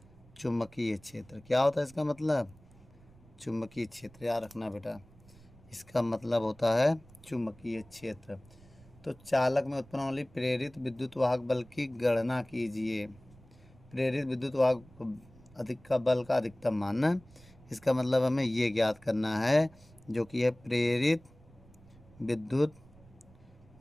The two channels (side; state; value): right; noise; rumble, 25 dB below the sound